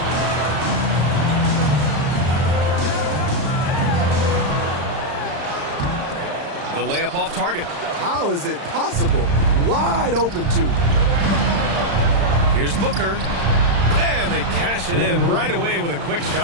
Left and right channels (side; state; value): left; late; 35 ms